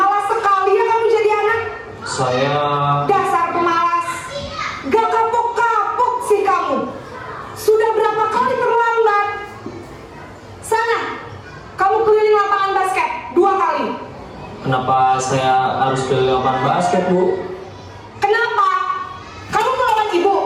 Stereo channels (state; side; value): identical; both; correlation 1.00